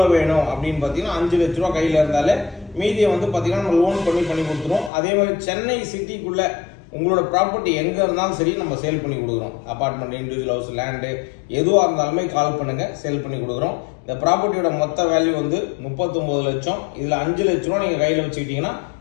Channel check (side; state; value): right; drops out; at 4.9 s